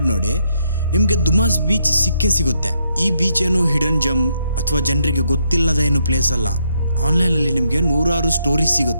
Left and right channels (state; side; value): inverted; both; correlation -0.76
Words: ನೋಡಿ, ನಿಮಗೆ ದುಮಾಸ್ ಬೀಚ್ ಸಿಗುತ್ತೆ. ಈ ಬೀಚ್ ಏನು ಹಿಡನ್ ಜಮ್ ಅಥವಾ ಜನರಿಗೆ ಗೊತ್ತಿಲ್ಲದ ಏನು ಪ್ಲೇಸ್ ಅಲ್ಲ. ಆನ್ಲೈನಲ್ಲಿ ನಿಮಗೆ ನೂರಾರು ಸ್ಟೋರೀಸ್